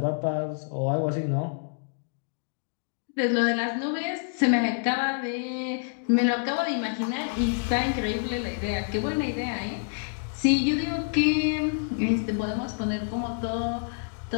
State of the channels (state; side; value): silent; right; digital silence